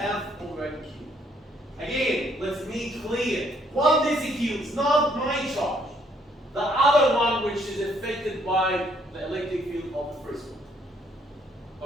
over Q. Again, let's make clear. What this Q is not my charge. The other one which is affected by the electric field of the first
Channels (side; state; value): both; normal; correlation 0.68